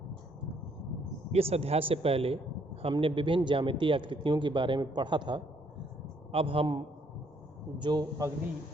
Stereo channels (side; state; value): both; normal; correlation 0.68